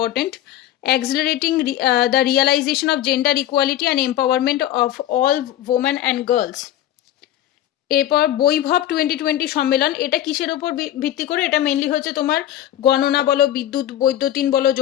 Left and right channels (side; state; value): right; quieter; 12.3 dB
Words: accelerating the realisation of gender equality and empowerment of all women and girls. এরপর বৈভব 2020 সম্মেলন, এটা কিসের ওপর ভিত্তি করে? এটা মেনলি হচ্ছে তোমার গণনা বলো, বিদ্যুৎ বৈদ্যুতিন বলো,